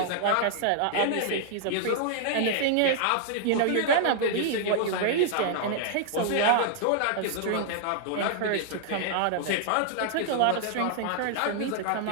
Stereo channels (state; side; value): different; both; correlation -0.01